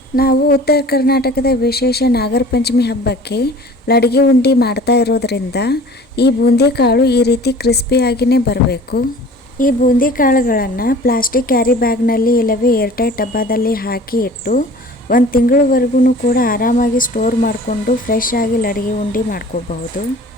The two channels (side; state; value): both; normal; correlation 0.45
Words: ನಾವು ಉತ್ತರ ಕರ್ನಾಟಕದ ವಿಶೇಷ ನಾಗರ ಪಂಚಮಿ ಹಬ್ಬಕ್ಕೆ ಲಡಗಿ ಉಂಡಿ ಮಾಡ್ತಾ ಇರೋದ್ರಿಂದ ಈ ಬೂಂದಿ ಕಾಳು ಈ ರೀತಿ ಕ್ರಿಸ್ಪಿಯಾಗಿಯೇ ಬರಬೇಕು. ಈ ಬೂಂದಿ ಕಾಳುಗಳನ್ನು ಪ್ಲಾಸ್ಟಿಕ್ ಕ್ಯಾರಿ ಬ್ಯಾಗ್ನಲ್ಲಿ ಇಲ್ಲವೇ ಏರ್ಟೈಟ್ ಡಬ್ಬದಲ್ಲಿ ಹಾಕಿ ಇಟ್ಟು 1 ತಿಂಗಳವರೆಗೂ ಕೂಡ ಆರಾಮಾಗಿ ಸ್ಟೋರ್ ಮಾಡಿಕೊಂಡು ಫ್ರೆಶ್ ಆಗಿ ಲಡಗಿ ಉಂಡಿ ಮಾಡ್ಕೋಬಹುದು.